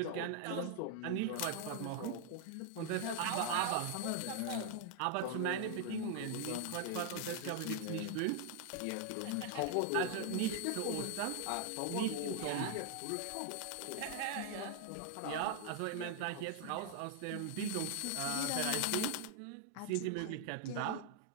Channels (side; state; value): both; different; correlation 0.00